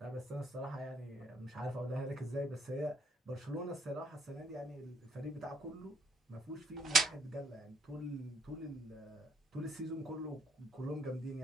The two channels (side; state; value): both; normal; correlation 0.70